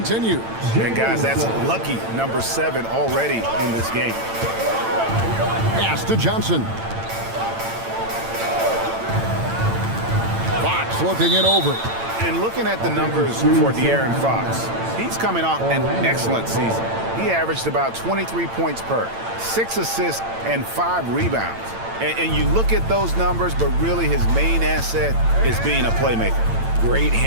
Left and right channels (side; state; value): left; late; 8.9 ms